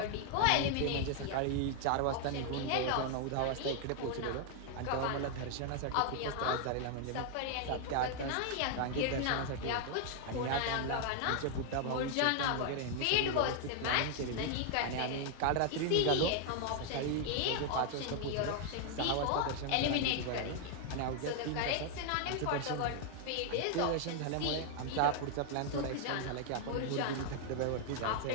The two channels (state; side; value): different; both; correlation 0.00